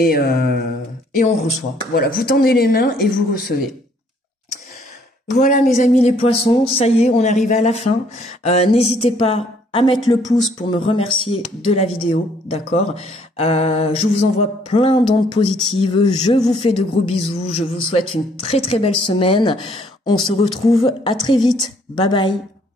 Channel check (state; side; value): normal; both; correlation 0.64